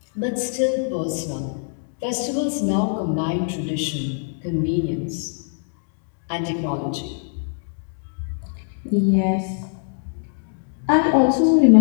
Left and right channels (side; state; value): right; silent; 64 dB below the other